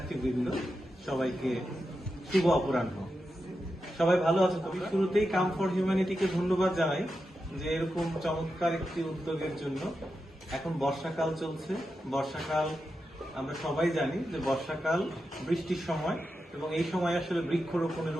সবাইকে শুভ অপরাহ্ন। সবাই ভালো আছেন? তবে শুরুতেই কাম ফর হিউম্যানিটিকে ধন্যবাদ জানাই যে এরকম চমৎকার একটি উদ্যোগের জন্য। এখন বর্ষাকাল চলছে। বর্ষাকাল আমরা সবাই জানি যে বর্ষাকাল বৃষ্টির সময়, এবং এই সময় আসলে বৃক্ষরোপণের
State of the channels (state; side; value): normal; both; correlation 0.89